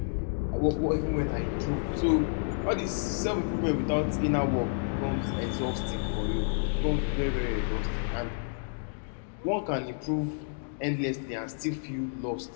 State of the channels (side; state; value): right; silent; digital silence